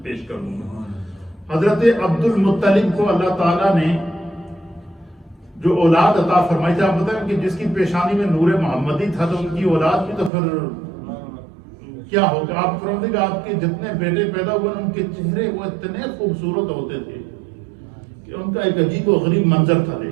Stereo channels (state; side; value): drops out; left; at 10.3 s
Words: پیش کر دوں گا۔ حضرت عبد المطلب کو اللہ تعالیٰ نے جو اولاد عطا فرمائی تھی، آپ بتائیں کہ جس کی پیشانی میں نور محمدی تھا، تو ان کی اولاد بھی تو پھر کیا ہوگا؟ آپ فرمائیں کہ آپ کے جتنے بیٹے پیدا ہوئے ان کے چہرے وہ اتنے خوبصورت ہوتے تھے کہ ان کا ایک عجیب و غریب منظر تھا